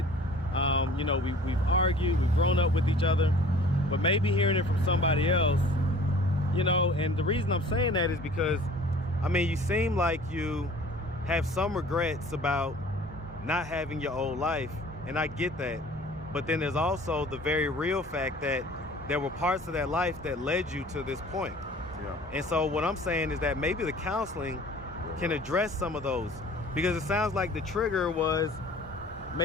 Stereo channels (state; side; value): normal; both; correlation 0.48